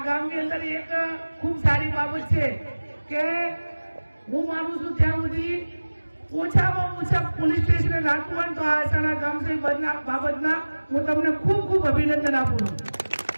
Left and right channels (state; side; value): inverted; both; correlation -1.00